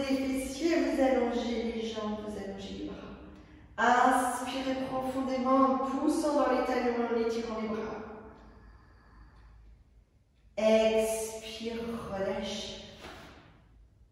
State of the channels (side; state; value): both; identical; correlation 1.00